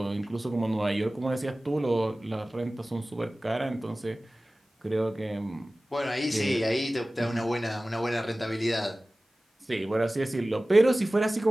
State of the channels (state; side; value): normal; both; correlation 0.97